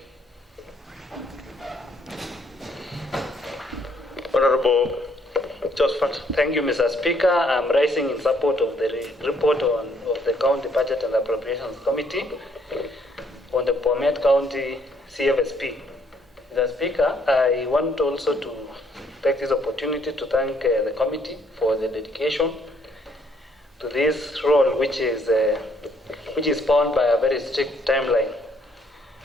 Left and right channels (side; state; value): both; normal; correlation 0.67